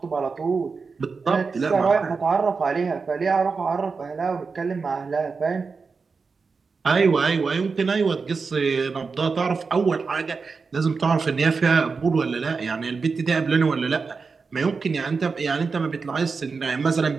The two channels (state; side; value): quieter; left; 4.8 dB